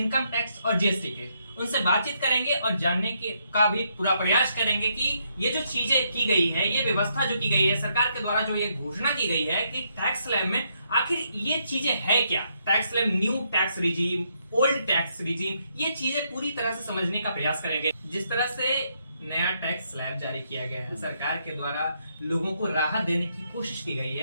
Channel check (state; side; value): inverted; both; correlation -0.75